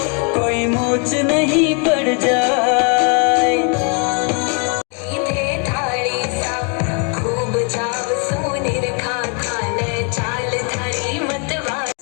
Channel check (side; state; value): right; quieter; 37.1 dB